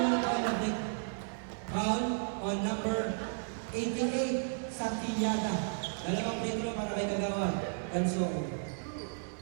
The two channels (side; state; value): left; silent; 55 dB below the other